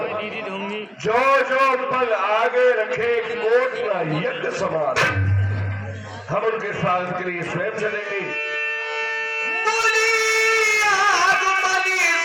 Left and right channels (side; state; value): both; identical; correlation 1.00